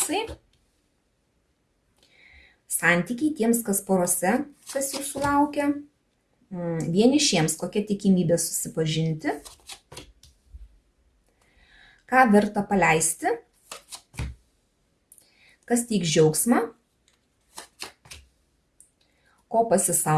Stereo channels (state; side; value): identical; both; correlation 1.00